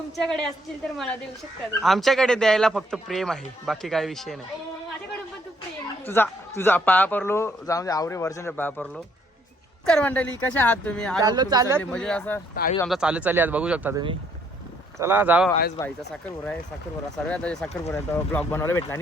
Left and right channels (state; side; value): normal; both; correlation 0.68